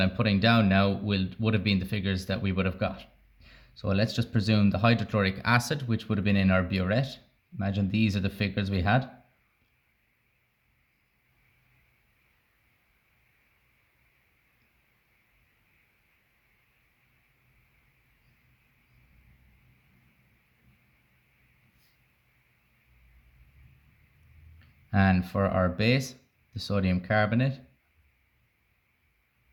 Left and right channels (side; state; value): both; identical; correlation 1.00